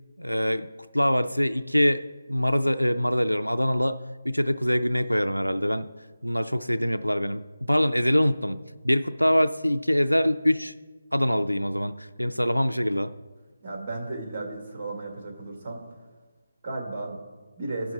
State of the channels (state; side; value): inverted; both; correlation -0.98